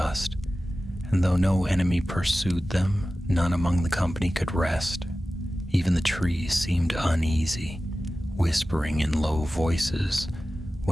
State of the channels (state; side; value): normal; both; correlation 0.95